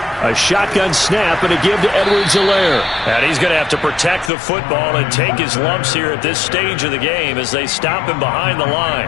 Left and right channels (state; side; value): drops out; right; at 4.3 s